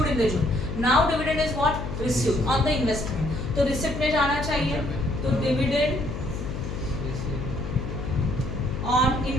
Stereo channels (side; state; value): left; noise; hum, 6 dB below the sound